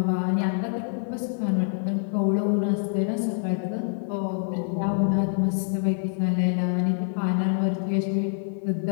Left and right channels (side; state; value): right; silent; 61 dB below the other